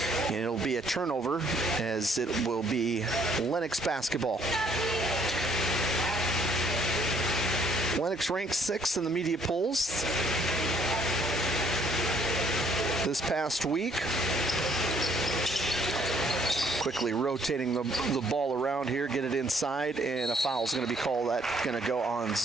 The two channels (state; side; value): normal; both; correlation 0.64